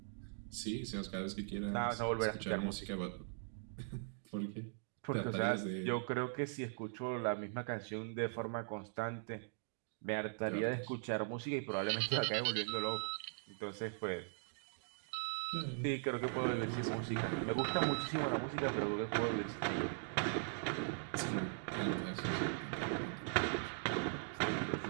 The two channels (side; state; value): left; silent; digital silence